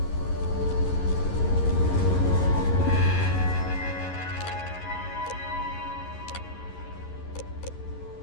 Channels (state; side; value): late; right; 11 ms